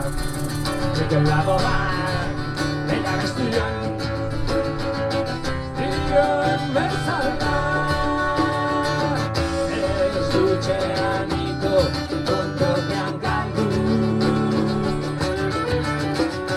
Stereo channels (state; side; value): identical; both; correlation 1.00